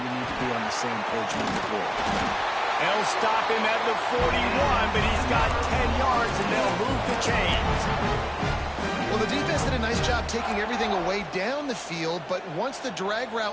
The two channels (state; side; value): identical; both; correlation 1.00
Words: need to be on the same page moving forward. They'll stop him at the 41, but he's got 10 yards, and they'll move the chains. Well, the defense did a nice job taking everything away down the field, but once the drag